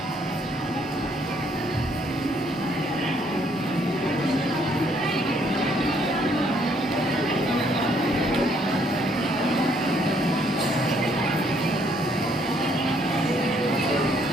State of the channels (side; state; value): both; normal; correlation 0.68